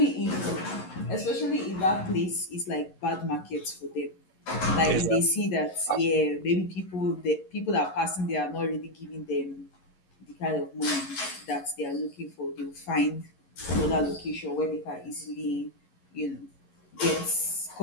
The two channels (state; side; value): late; right; 11 ms